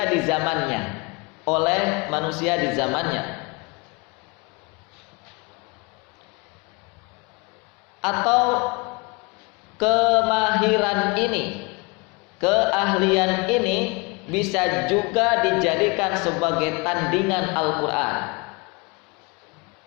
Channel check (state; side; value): quieter; right; 28.1 dB